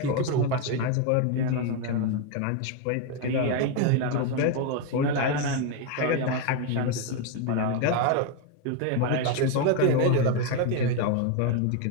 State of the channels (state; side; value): different; both; correlation 0.01